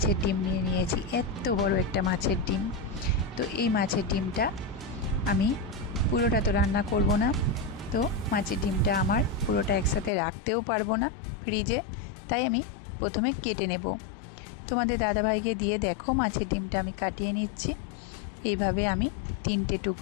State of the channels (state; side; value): drops out; right; at 10.1 s